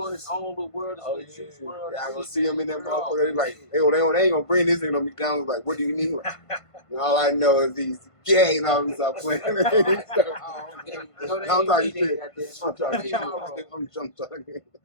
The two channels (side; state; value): right; late; 1.5 ms